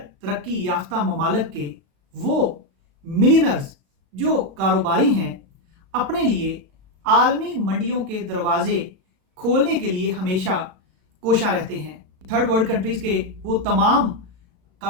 तरक्की याफ्ता ममालिक के वो मिलियनर्स जो कारोबारी हैं अपने लिए आलमी मंडियों के दरवाजे खोलने के लिए हमेशा कोशा रहते हैं। थर्ड वर्ल्ड कंट्रीज के वो तमाम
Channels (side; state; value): left; late; 36 ms